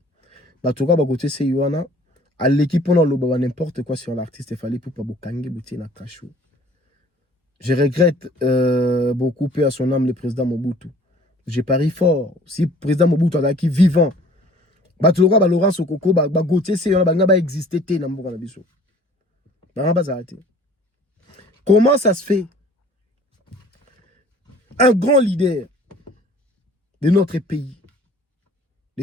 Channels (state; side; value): normal; both; correlation 0.51